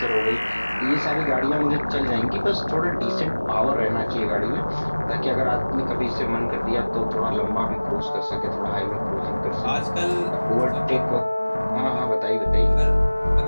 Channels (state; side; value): inverted; both; correlation -1.00